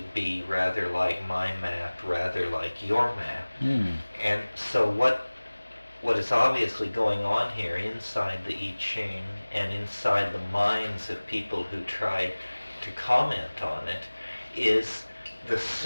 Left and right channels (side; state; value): both; inverted; correlation -1.00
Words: be rather like my map, rather like your map. And so what is obviously going on here inside the I Ching and inside the minds of people who try to comment on it is the